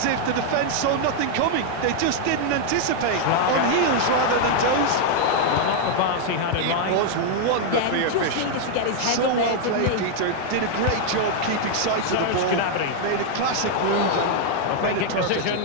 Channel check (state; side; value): different; both; correlation 0.00